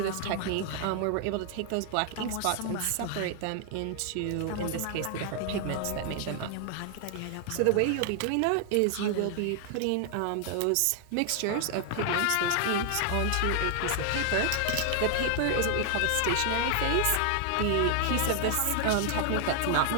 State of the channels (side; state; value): both; different; correlation 0.00